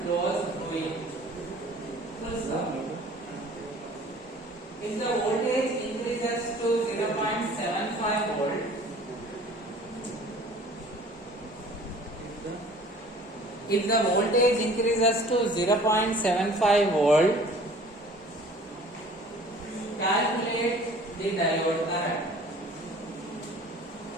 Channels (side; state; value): both; normal; correlation 0.49